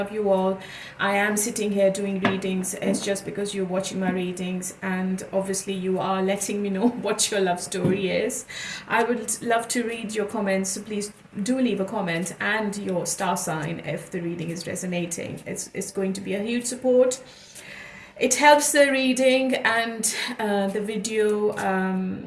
you all. I am sitting here doing readings. It's just because you're watching my readings, and obviously, you are letting me know what your love story is. I would love to read your comments, so please do leave a comment and your star sign if the reading is resonating. It's going to be a huge support. It helps the reading and the video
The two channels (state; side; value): identical; both; correlation 1.00